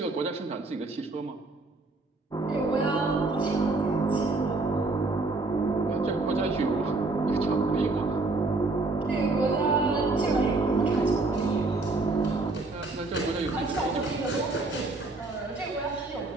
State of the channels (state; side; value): quieter; left; 3.3 dB